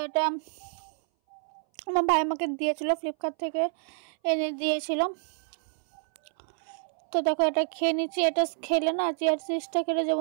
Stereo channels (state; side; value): silent; left; 59 dB below the other